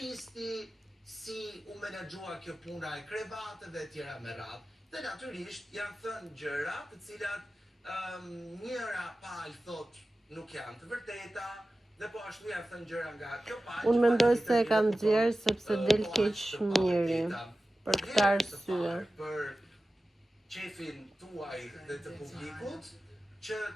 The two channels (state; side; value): normal; both; correlation 0.95